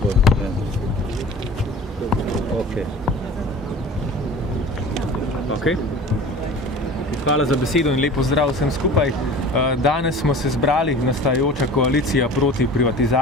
pa. Hvala za besedo in lep pozdrav vsem skupaj. Danes smo se zbrali, nastajajoča koalicija proti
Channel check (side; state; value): both; normal; correlation 0.40